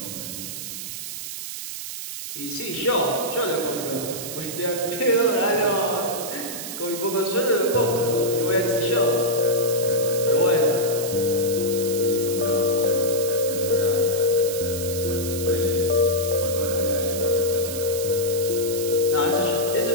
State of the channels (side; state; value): right; noise; hiss, 8 dB below the sound